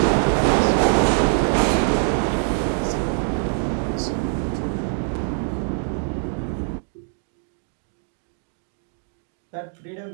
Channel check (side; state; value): left; silent; 56 dB below the other